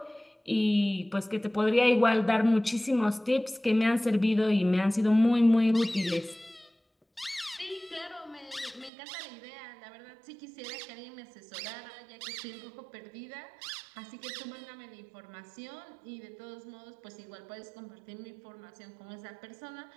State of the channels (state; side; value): drops out; left; at 8.9 s